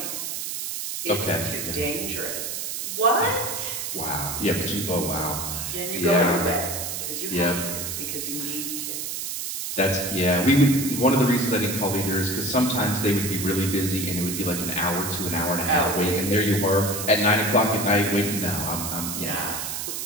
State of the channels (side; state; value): right; noise; hiss, 4 dB below the sound